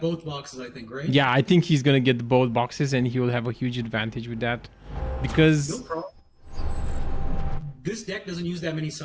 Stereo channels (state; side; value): identical; both; correlation 1.00